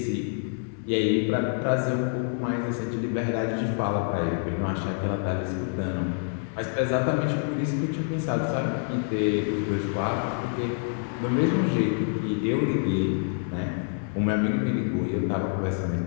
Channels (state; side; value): silent; right; 60 dB below the other